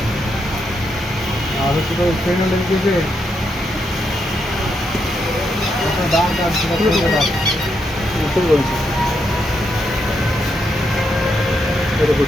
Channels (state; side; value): normal; both; correlation 0.80